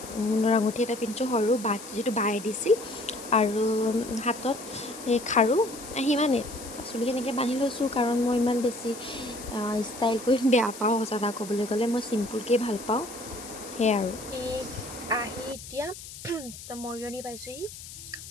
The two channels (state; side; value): noise; left; hiss, 14 dB below the sound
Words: সোণৰ আঙুঠি এটা পিন্ধিছোঁ সৰু যিটো বায়ে দিছিল আৰু হাতত সেই খাৰু সিমানেই চুলি এনেকৈ বান্ধি লৈছোঁ কাৰণ মই ইমান বেছি ষ্টাইল কৰি বেয়া পাওঁ সঁচা কথা ক'বলৈ গ'লে মই চিম্পুলকৈ ভাল পাওঁ সেয়াই আৰু এই আহি এতিয়া মৰিয়নি পাইছোঁহি